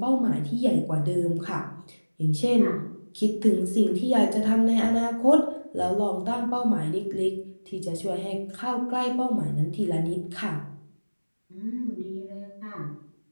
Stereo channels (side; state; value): both; inverted; correlation -1.00